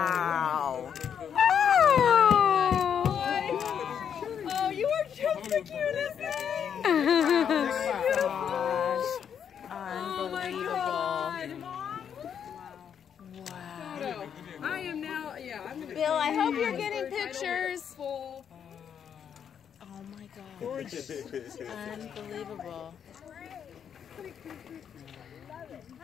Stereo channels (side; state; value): right; quieter; 8.1 dB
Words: Oh, you are just the cutest thing! Unbelievable. Wow. I am now, yeah, I'm gonna Bill, I hope you're getting pictures. Full. Oh my gosh. Unbelievable.